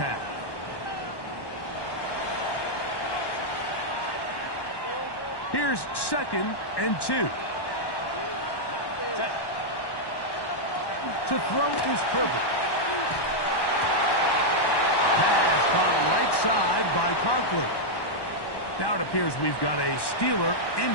Here's second and 2. To throw is Herbert. Pass caught right side by Conklin. Now it appears we've got a Steeler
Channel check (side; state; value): right; late; 1.1 ms